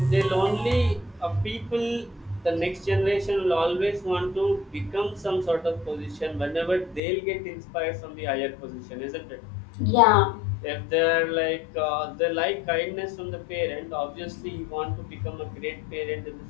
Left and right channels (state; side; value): drops out; right; at 7.0 s